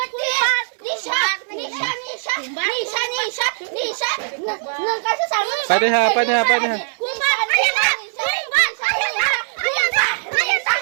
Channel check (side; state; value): left; silent; 59 dB below the other